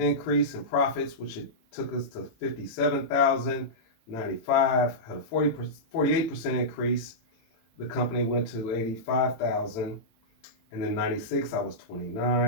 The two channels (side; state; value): right; late; 18 ms